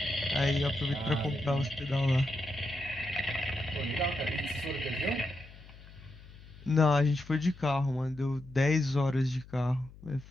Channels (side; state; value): left; noise; hum, 19 dB below the sound